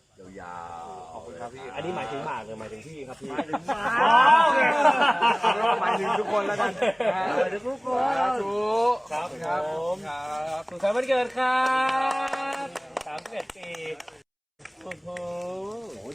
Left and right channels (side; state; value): both; identical; correlation 1.00